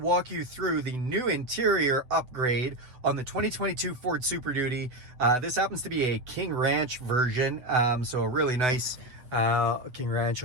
you through the new interior upgrade on the 2022 Ford Super Duty. This happens to be a King Ranch version, so a really nice King Ranch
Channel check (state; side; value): late; left; 8.0 ms